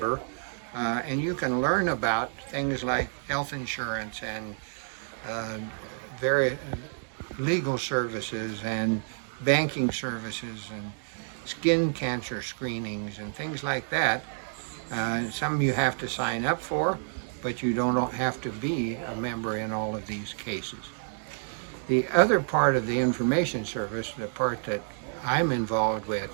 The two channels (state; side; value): silent; left; digital silence